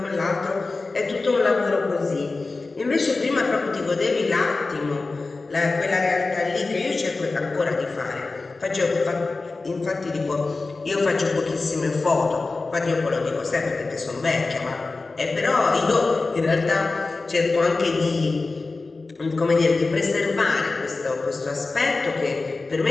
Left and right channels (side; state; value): right; quieter; 3.6 dB